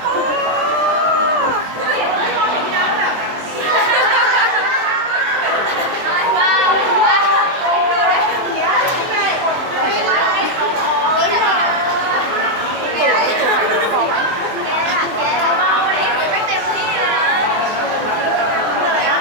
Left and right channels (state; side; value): late; left; 23 ms